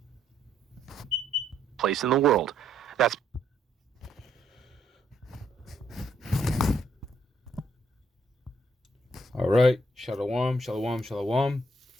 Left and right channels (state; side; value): normal; both; correlation 0.71